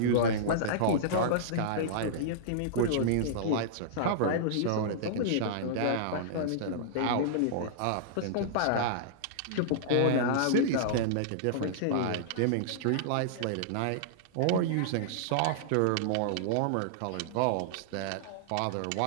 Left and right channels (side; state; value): both; different; correlation -0.02